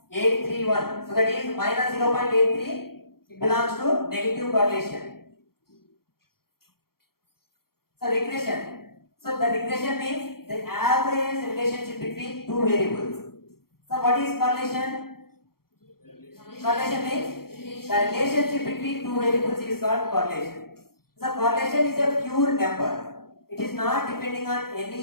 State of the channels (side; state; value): right; late; 0.94 ms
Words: So that is -0.83. It belongs to negative correlation. So regression. So the regression means the average relationship between two variables. So what is correlation? Correlation means the relationship between two variables is called correlation. So correlation is a pure number. It is not depending on any